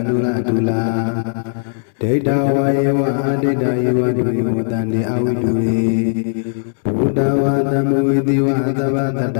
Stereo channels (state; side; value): silent; right; 68 dB below the other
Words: နုလတုလာဒိဋ္ဌဝယေဝအဒိဋ္ဌယေဝဒုယောတန္တိအဝိတုရေဘုဒ္ဓဝါသမဝိတိဝသဗ္ဗတတ္